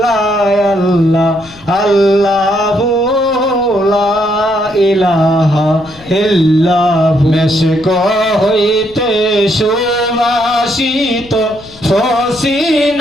আল্লাহ আল্লাহু লা ইলাহা ইল্লাহু মেশক হইতে সুবাসিত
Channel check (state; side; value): noise; left; rumble, 22 dB below the sound